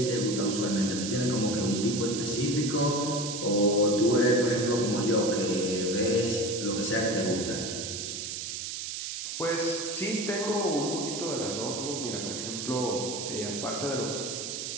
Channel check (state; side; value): noise; right; hiss, 5 dB below the sound